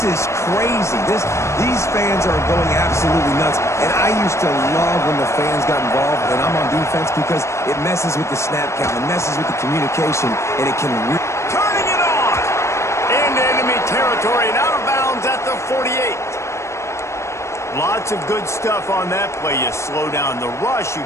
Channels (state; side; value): late; right; 0.13 ms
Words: is crazy. These fans are going absolutely nuts. And I used to love when the fans got involved, and I'm on defense, because it messes with the snap count. It messes with the communication, and it can really... Turning it on! Into enemy territory and out of bounds at the 48. Lots of good stuff on that play. You slow down the rush, you